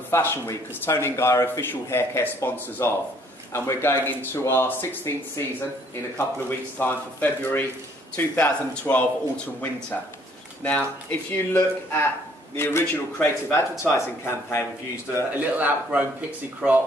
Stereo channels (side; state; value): both; normal; correlation 0.62